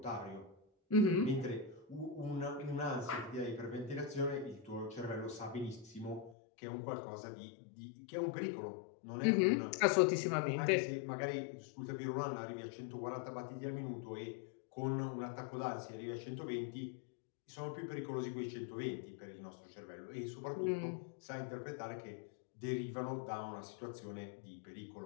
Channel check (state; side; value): drops out; right; at 6.4 s